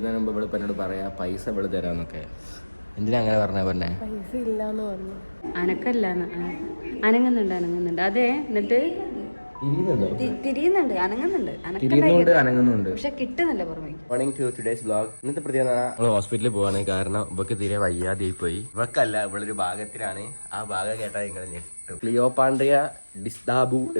മുമ്പ് ഇവിടെ എന്നോട് പറയാം പൈസ ഇവിടെ തരാമെന്നൊക്കെ. എന്തിനാ അങ്ങനെ പറഞ്ഞേ? പൈസ ഇല്ലാന്ന് പറഞ്ഞു. അനങ്ങുന്നുണ്ട്. അതെ, എന്നിട്ട് തിരിയുന്നുണ്ട്, അനങ്ങുന്നുണ്ട്, പക്ഷെ കിട്ടുന്നില്ല പുറമേ. Morning to today's vlog. ഇന്നത്തെ പ്രത്യേകത നമ്മൾ ഹോസ്പിറ്റലിൽ പോവാണ്. കാരണം ഇവക്ക് തീരെ വയ്യാതെ പോയി. ഇവക്കല്ല, ഇവളൊരു ഭാഗത്തിലാണ്. ആ ഭാഗം കേട്ടാൽ നിങ്ങൾ ഞെട്ടും. ക്ലിയോപാൻഡ്രിയ ഡിസ്ഡാബു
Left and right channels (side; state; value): both; inverted; correlation -1.00